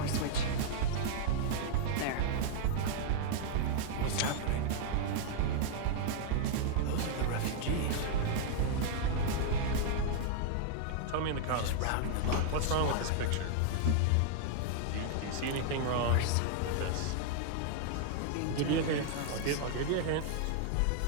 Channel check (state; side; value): different; both; correlation -0.01